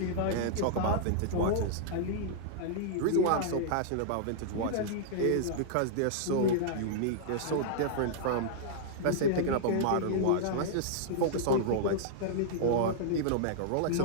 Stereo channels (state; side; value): different; both; correlation -0.02